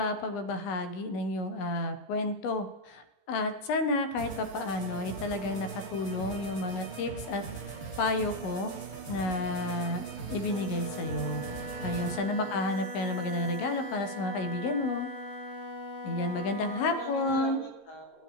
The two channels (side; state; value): right; late; 15 ms